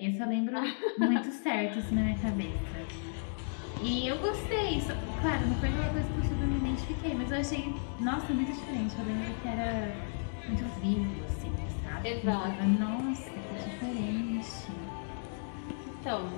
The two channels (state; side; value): silent; right; digital silence